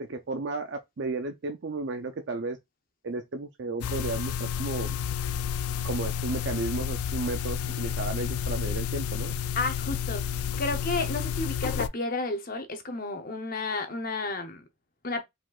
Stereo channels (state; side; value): quieter; right; 3.1 dB